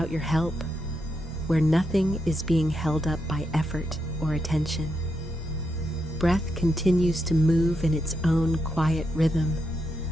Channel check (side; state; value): both; normal; correlation 0.83